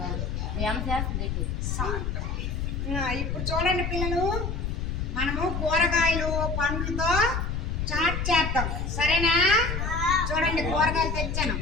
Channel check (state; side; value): noise; left; rumble, 2 dB below the sound